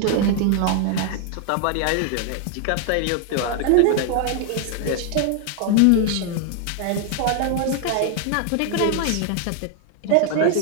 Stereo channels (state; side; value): different; both; correlation 0.00